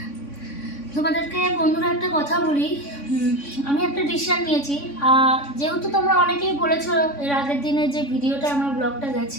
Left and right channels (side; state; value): right; late; 3.5 ms